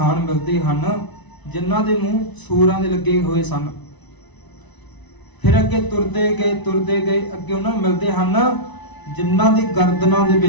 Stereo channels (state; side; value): late; right; 1.0 ms